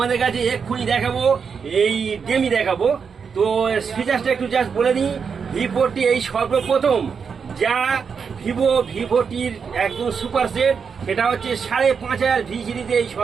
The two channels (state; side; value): quieter; left; 6.1 dB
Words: কাছে এক্ষুনি দেখাবো, এই গেমই দেখাবো। তো ফিচার্সটা একটু জাস্ট বলে দিই। V40 এই সর্বপ্রথম যা ভিভোটির একদম সুপার সেট, সেটা হচ্ছে 5,500 ভি সিরিজে এই